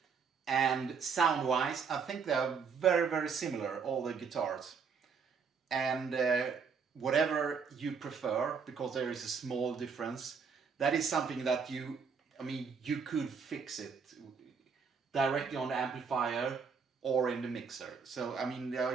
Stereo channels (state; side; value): quieter; left; 5.8 dB